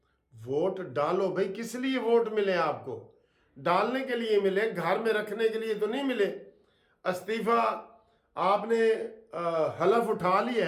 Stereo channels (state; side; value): identical; both; correlation 1.00